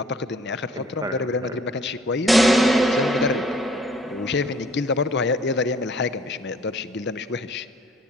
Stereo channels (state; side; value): normal; both; correlation 0.57